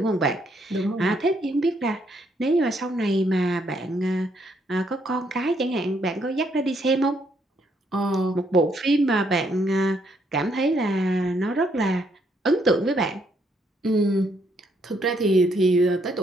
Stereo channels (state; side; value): normal; both; correlation 0.72